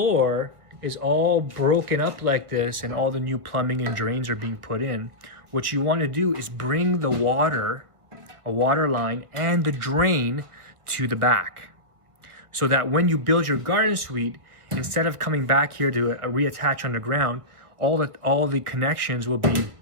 is all broken up like this and all the new plumbing and drains are being put in, what you want to do is bring the water, a water line, and the drain to the back, so that when you build your garden suite, instead of coming back here to reattach underground, all the connections will be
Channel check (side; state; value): left; late; 1.5 ms